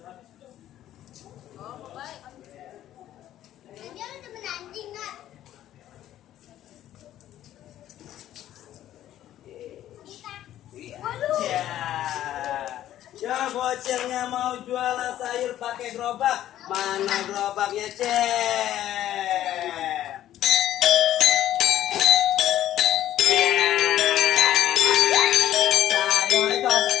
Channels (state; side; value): quieter; right; 12.5 dB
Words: Oh, baik. Dia ada temen anjing nggak? Ya bocilnya mau jualan sayur pakai gerobak. Mana gerobaknya cek? Sayur itu